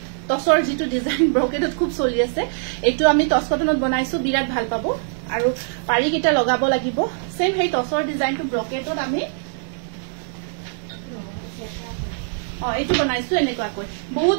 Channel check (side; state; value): left; silent; 64 dB below the other